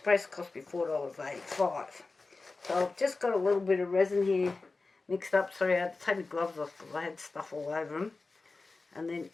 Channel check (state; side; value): quieter; right; 3.7 dB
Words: cost me $4.85. So I've just got a little bit of resin here mixed up. Sorry, I had to take my gloves off because I had stuff all over them. And then